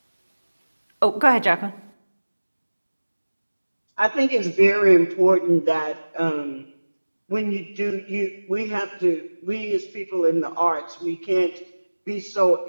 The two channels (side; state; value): both; inverted; correlation -1.00